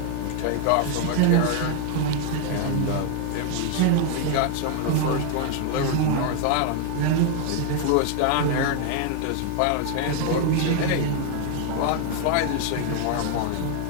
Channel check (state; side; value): different; both; correlation 0.00